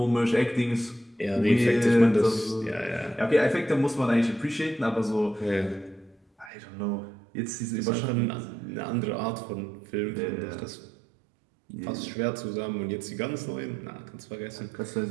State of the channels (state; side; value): drops out; left; at 6.5 s